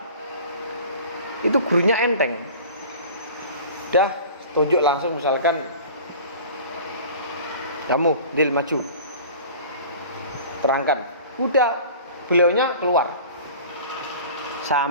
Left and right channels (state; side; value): inverted; both; correlation -0.41